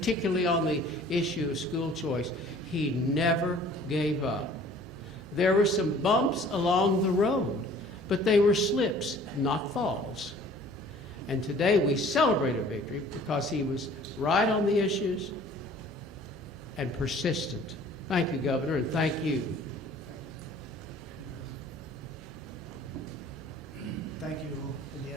on the issue of school choice. He never gave up. There were some bumps along the road, but they were slips, not falls. And today we celebrate a victory because he was right on the issues and persistent. Thank you, Governor, and thank you. Thank you all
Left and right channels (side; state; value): both; normal; correlation 0.51